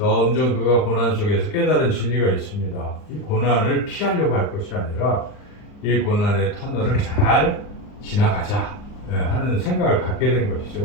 그가 고난 속에서 깨달은 진리가 있습니다. 이 고난을 피하려고 할 것이 아니라 이 고난의 터널을 잘 지나가자 하는 생각을 갖게 된 것이죠.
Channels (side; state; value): right; late; 39 ms